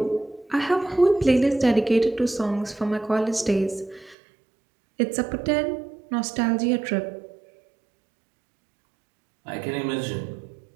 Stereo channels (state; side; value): drops out; left; at 4.2 s